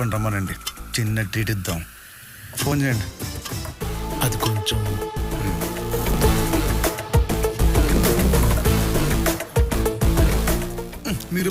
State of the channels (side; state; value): both; identical; correlation 1.00